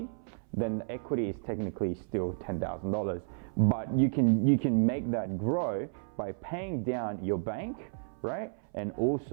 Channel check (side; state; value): left; silent; 56 dB below the other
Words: then the equity is technically still $10,000. But you can make that grow by paying down your bank, right? And